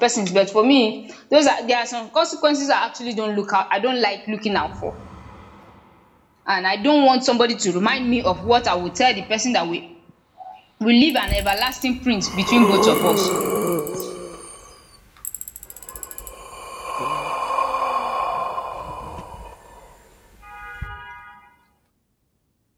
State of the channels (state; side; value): identical; both; correlation 1.00